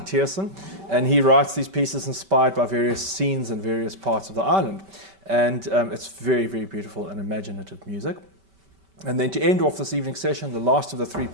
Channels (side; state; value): left; late; 5.2 ms